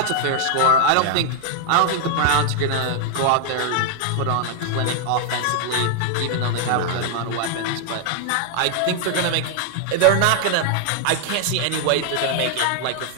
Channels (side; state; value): both; different; correlation 0.00